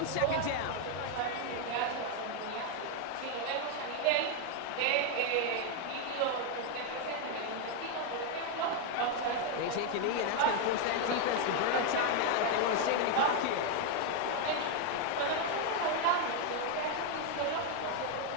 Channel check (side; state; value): both; different; correlation 0.01